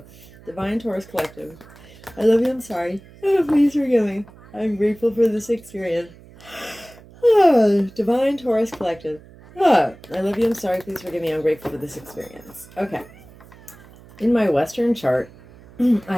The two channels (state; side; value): noise; right; hum, 22 dB below the sound